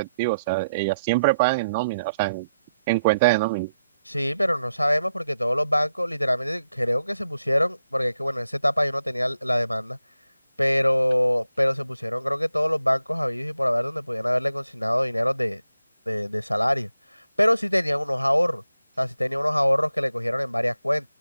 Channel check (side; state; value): both; inverted; correlation -0.83